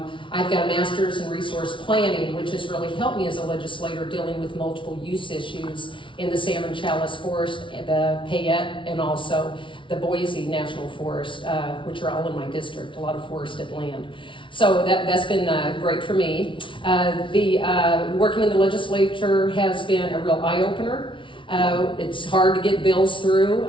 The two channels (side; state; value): right; late; 0.25 ms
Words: I've got a master's in resource planning, which has really helped me as a legislator dealing with multiple use issues in the Salmon Chalice Forest, the Payette, and also the Boise National Forest, which are all in my district, a lot of forested land. So that's been great for me. Working in the legislature has been a real eye-opener. It's hard to get bills through